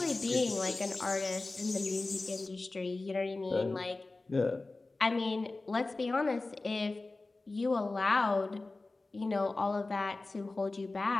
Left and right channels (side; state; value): right; quieter; 3.3 dB